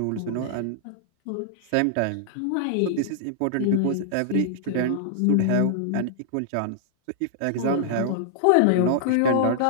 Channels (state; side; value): different; both; correlation -0.01